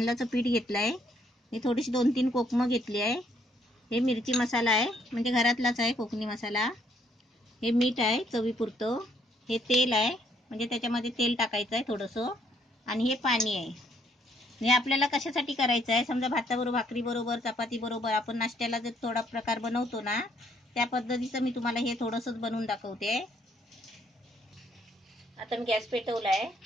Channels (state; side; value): normal; both; correlation 0.69